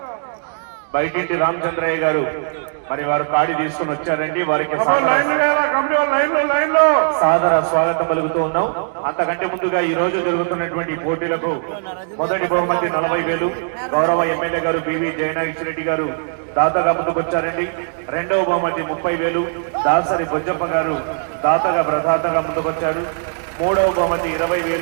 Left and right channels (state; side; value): silent; left; digital silence